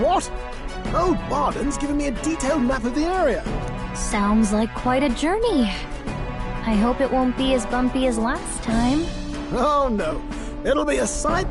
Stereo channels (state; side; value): identical; both; correlation 1.00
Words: Old Barden's given me a detailed map of the area. Sounds like quite a journey. I hope it won't be as bumpy as last time. Oh no, it'll be a